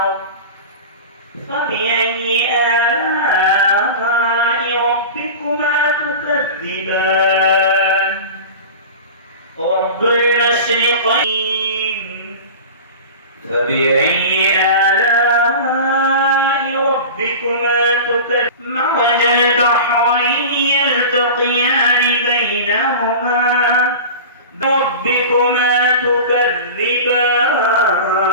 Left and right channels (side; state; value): both; inverted; correlation -0.33